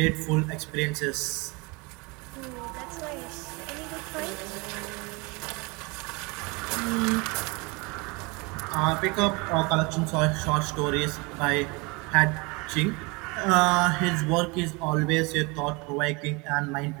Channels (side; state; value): left; quieter; 27.4 dB